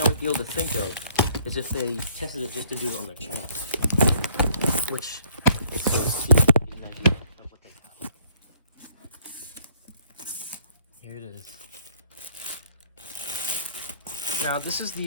would be able to think of is if they tested it just to do it on their channel, which is so get an idea of what they have. Here it is. Now, this is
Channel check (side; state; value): both; inverted; correlation -0.62